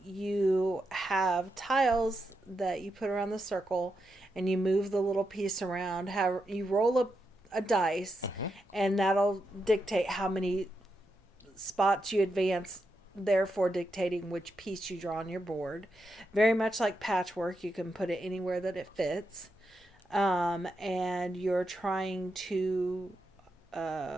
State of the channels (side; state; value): both; normal; correlation 0.85